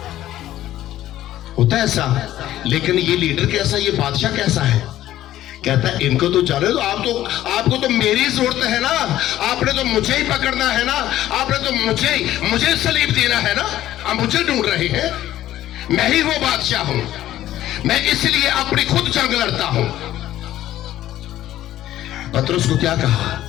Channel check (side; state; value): right; quieter; 13.5 dB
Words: होता है ऐसा। लेकिन ये लीडर कैसा, ये बादशाह कैसा है, कहता है इनको तो जाने दो, आपको तो मेरी जरूरत है ना, आपने तो मुझे ही पकड़ना है ना, आपने तो मुझे सलीब देना है ना, आप मुझे ढूंढ रहे हैं, मैं ही वो बादशाह हूं, मैं इसलिए अपनी खुद जंग लड़ता हूं। पतरस को क्या कहा